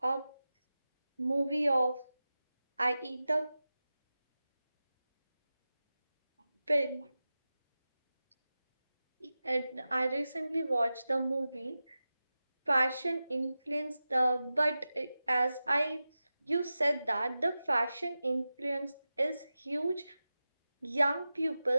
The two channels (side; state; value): both; inverted; correlation -0.94